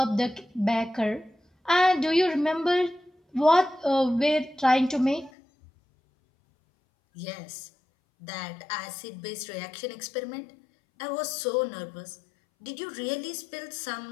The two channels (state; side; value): drops out; right; at 5.3 s